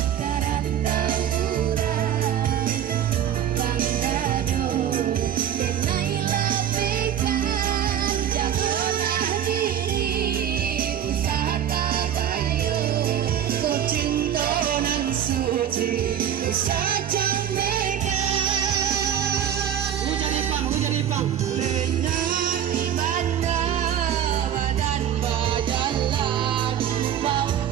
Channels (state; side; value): quieter; left; 9.8 dB